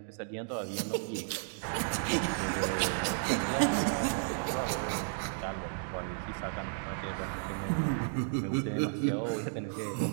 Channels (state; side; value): silent; left; digital silence